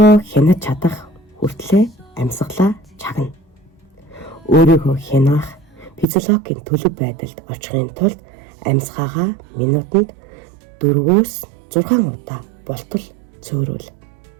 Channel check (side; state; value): left; drops out; at 6.1 s